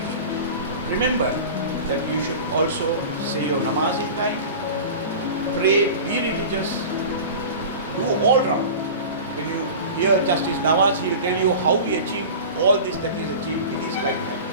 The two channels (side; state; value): both; inverted; correlation -0.34